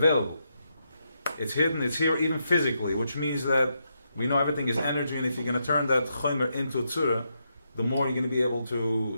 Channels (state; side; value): inverted; both; correlation -0.82